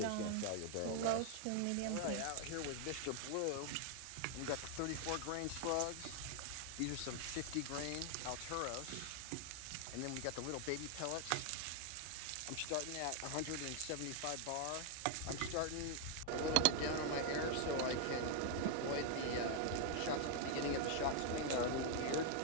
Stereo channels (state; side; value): different; both; correlation 0.00